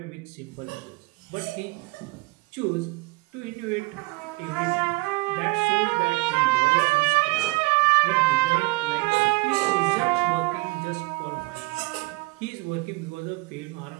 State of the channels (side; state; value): left; quieter; 24.7 dB